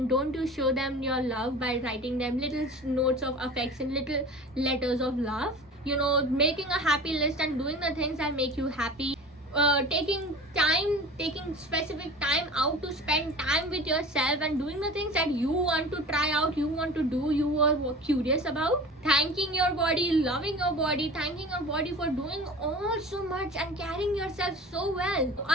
don't you show them your love by writing them little notes of affection, little letters of love. Making a happy list and doing the things that make you happy. Taking specific time out to spend time with yourself and doing the things that you want to try out, you want to do, you are curious about. Thanking your body, loving your body, thanking your body for doing all so much and carrying yourself so well.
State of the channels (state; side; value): normal; both; correlation 0.37